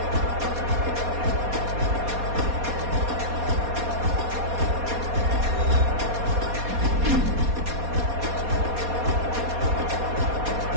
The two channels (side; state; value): left; late; 4.2 ms